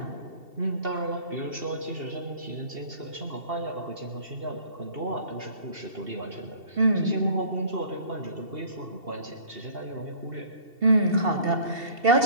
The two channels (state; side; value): late; left; 2.7 ms